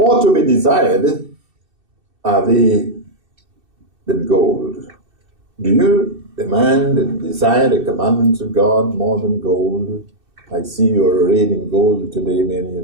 to be desired are they than gold. Do you demand and desire the commandments of God more than gold? I see you are arrayed in gold today, many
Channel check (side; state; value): left; late; 2.6 ms